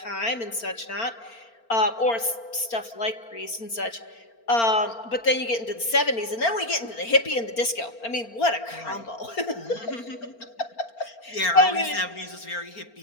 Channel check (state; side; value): late; right; 4.4 ms